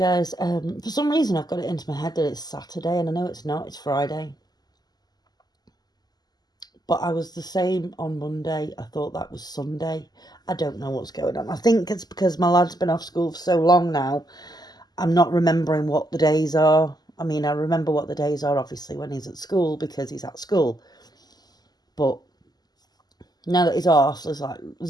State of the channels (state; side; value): late; right; 0.20 ms